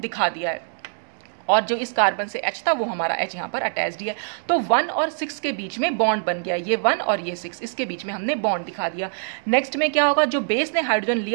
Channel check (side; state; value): left; silent; digital silence